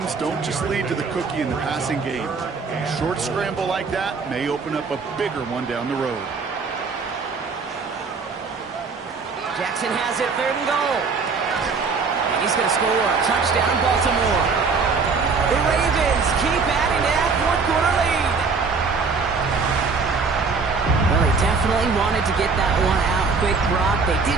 don't just lead to the cookie in the passing game. A short scramble like that may open up a bigger one down the road. Jackson has it, 3rd and goal. He's going to score. Touchdown, Baltimore. The Ravens keep adding to that fourth-quarter lead. Well, they definitely wanted to get that one out quick, Brock. They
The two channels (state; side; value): quieter; left; 4.8 dB